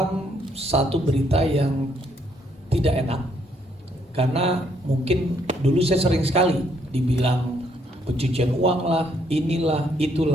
satu berita yang tidak enak. Karena mungkin dulu saya sering sekali dibilang pencucian uang lah, inilah,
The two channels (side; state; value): both; normal; correlation 0.70